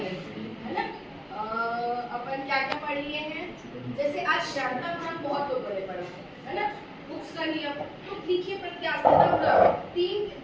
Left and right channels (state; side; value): identical; both; correlation 1.00